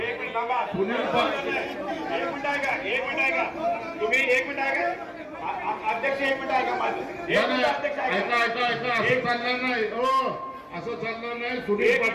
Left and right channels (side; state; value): both; identical; correlation 1.00